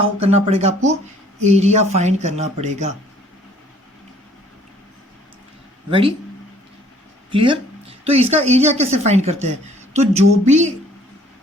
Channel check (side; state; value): both; normal; correlation 0.58